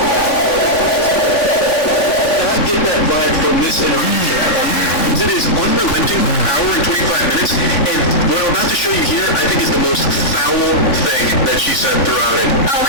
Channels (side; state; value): right; late; 3.6 ms